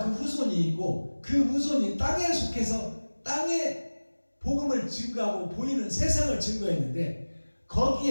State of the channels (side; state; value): both; inverted; correlation -1.00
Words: 그 후손이 있고 그 후손이 땅에 속해서 땅에 복음을 증거하고 보이는 세상을 증거했는데